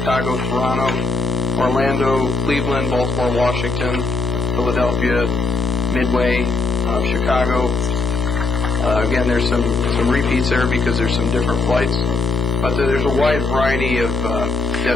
Toronto, Orlando, Cleveland, Baltimore, Washington, Philadelphia, Midway, Chicago. Again, there's some repeats there because there's some different flights, but there's a wide variety of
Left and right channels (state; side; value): noise; left; hum, 2 dB below the sound